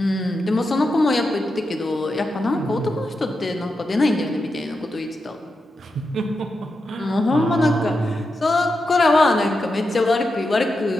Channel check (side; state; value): both; normal; correlation 0.88